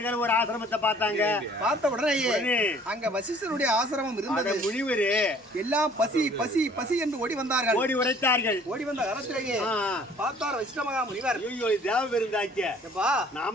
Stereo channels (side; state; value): both; normal; correlation 0.55